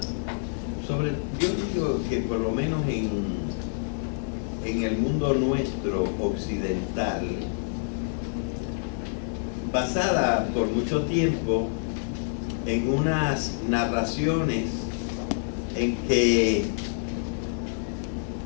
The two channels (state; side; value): silent; right; 60 dB below the other